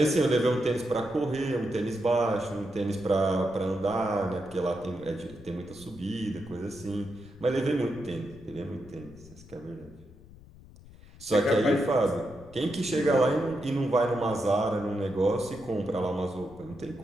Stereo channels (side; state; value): left; noise; rumble, 21 dB below the sound